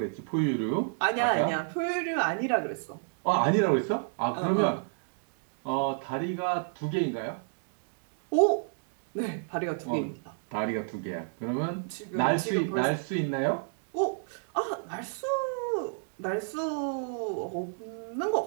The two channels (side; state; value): left; silent; digital silence